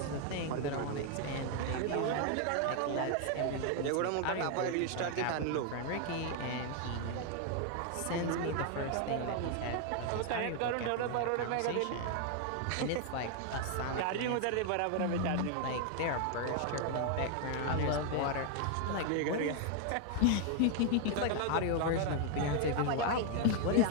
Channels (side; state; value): both; different; correlation 0.00